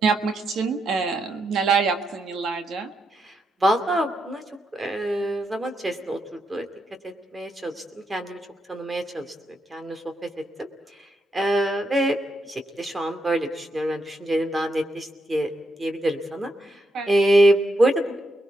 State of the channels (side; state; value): both; normal; correlation 0.81